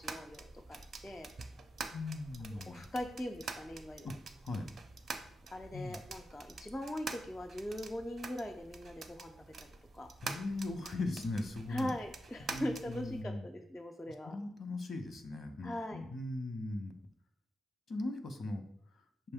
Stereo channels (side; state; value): both; normal; correlation 0.89